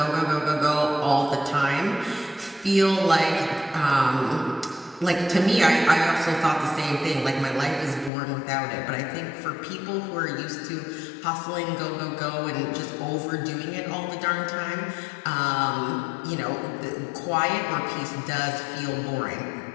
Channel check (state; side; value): drops out; right; at 8.1 s